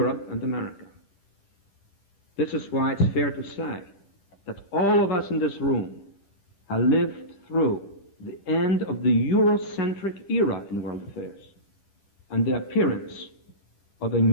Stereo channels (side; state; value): right; late; 10 ms